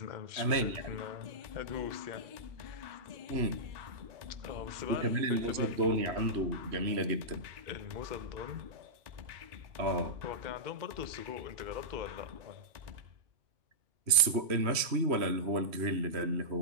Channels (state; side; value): late; left; 3.0 ms